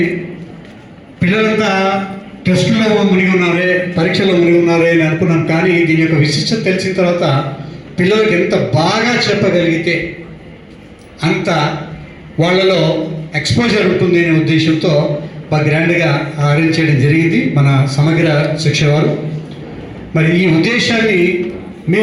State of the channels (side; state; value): both; identical; correlation 1.00